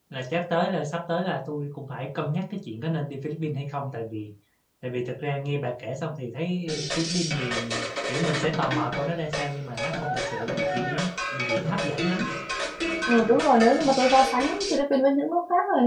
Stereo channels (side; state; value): both; identical; correlation 1.00